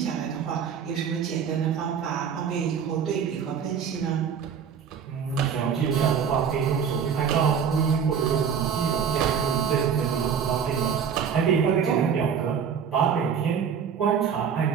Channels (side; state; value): left; quieter; 7.3 dB